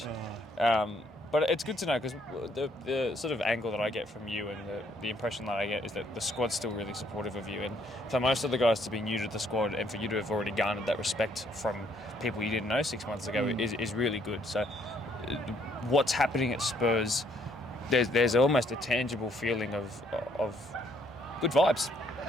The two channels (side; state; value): both; normal; correlation 0.68